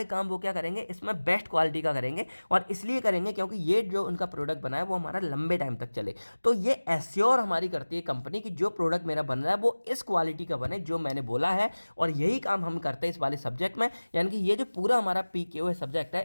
काम वो क्या करेंगे, इसमें बेस्ट क्वालिटी का करेंगे। और इसलिए करेंगे क्योंकि ये जो उनका प्रोडक्ट बना है वो हमारा लंबे टाइम तक चले। तो ये एश्योर हमारी करती है कंपनी कि जो प्रोडक्ट मेरा बन रहा है वो इस क्वालिटी का बने जो मैंने बोला है। और यही काम हम करते हैं इस वाले सब्जेक्ट में। यानी कि ये जो पूरा हमारा PKO सब्जेक्ट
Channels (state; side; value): inverted; both; correlation -1.00